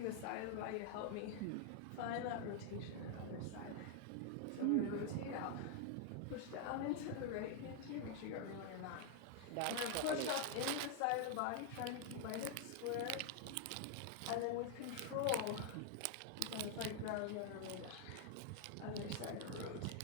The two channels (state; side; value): different; both; correlation 0.00